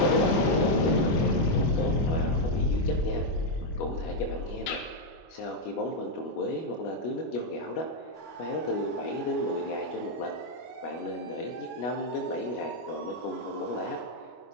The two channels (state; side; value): late; right; 25 ms